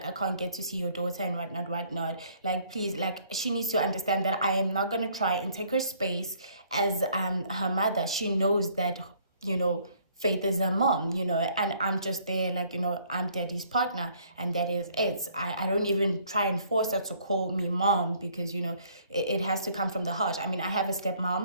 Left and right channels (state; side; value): inverted; both; correlation -0.62